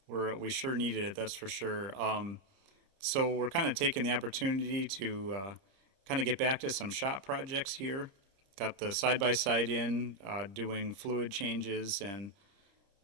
sure needed it, that's for sure. So we're kind of taking the opportunity to kind of get back to some shop projects here. Got the side by side in, doing fluid changes and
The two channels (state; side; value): late; left; 31 ms